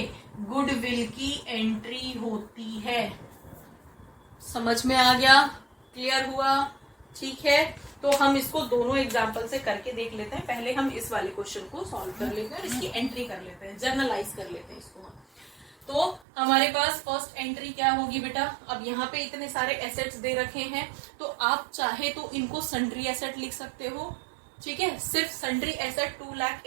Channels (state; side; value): drops out; left; at 16.2 s